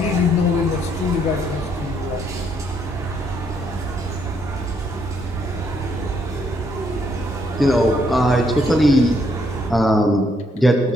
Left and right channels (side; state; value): both; normal; correlation 0.72